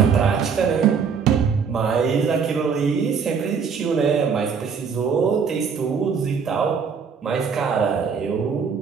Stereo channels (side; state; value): left; quieter; 6.2 dB